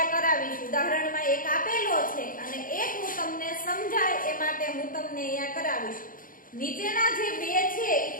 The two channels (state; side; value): late; right; 0.40 ms